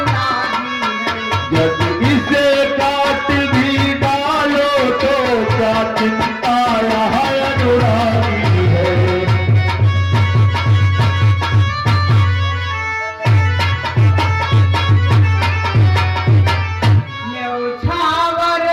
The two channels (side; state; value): both; identical; correlation 1.00